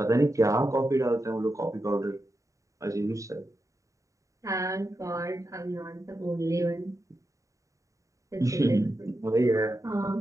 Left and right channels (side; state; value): left; late; 0.16 ms